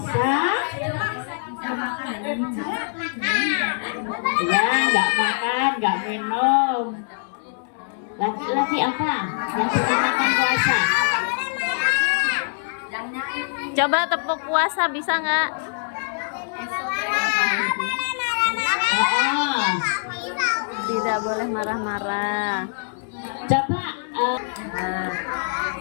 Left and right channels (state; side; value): silent; right; 62 dB below the other